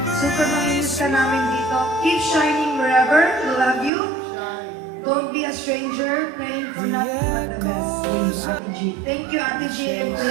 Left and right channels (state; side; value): drops out; left; at 3.9 s